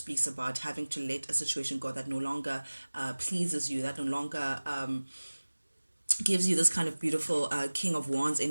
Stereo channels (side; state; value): both; inverted; correlation -1.00